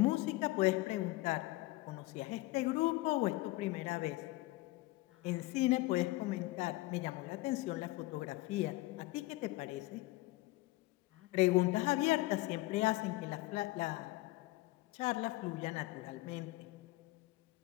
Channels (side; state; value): right; quieter; 19.9 dB